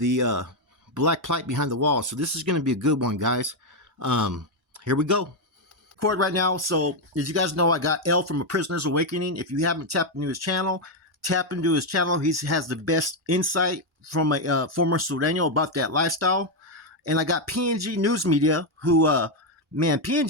black plight behind the wall. So this is gonna be a good one, guys. Here we go. Record right now. So as you guys know, I got L from A Prisoner's Awakening. If you haven't tapped into his channel, tap into his channel. He has the best insight from a former Sureno about that lifestyle. And I got PNG News Media, who man,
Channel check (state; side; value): normal; both; correlation 0.03